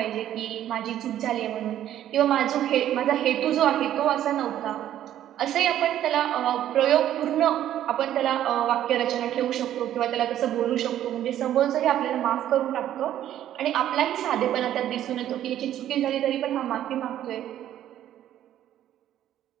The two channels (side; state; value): left; quieter; 11.7 dB